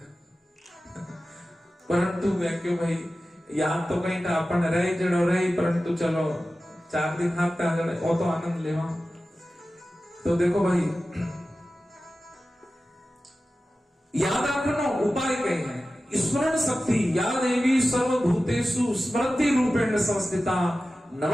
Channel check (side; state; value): both; normal; correlation 0.95